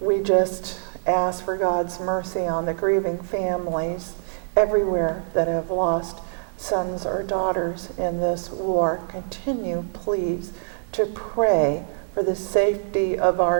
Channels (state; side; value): silent; left; digital silence